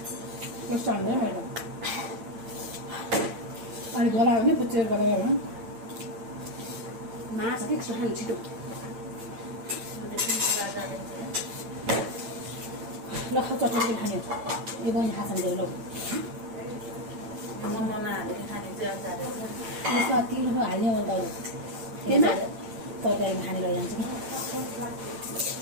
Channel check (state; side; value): late; left; 8.8 ms